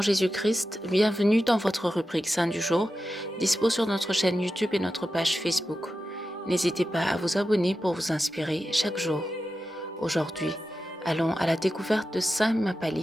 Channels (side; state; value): both; normal; correlation 0.91